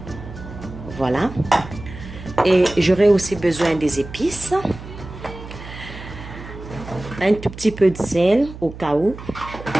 Voilà. Et j'aurai aussi besoin des épices. Un tout petit peu de sel au cas où.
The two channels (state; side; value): noise; right; hum, 13 dB below the sound